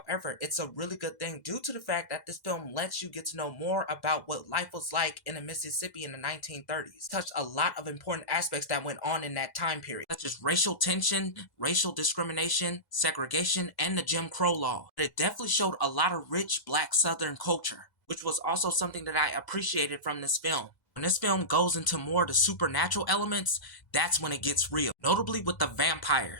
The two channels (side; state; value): right; late; 2.0 ms